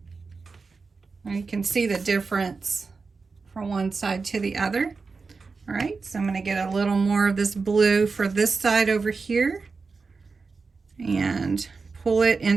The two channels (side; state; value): left; quieter; 4.5 dB